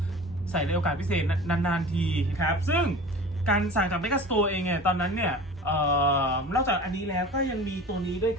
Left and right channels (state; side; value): normal; both; correlation 0.38